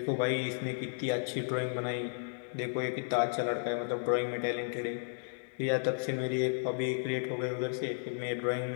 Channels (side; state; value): right; silent; digital silence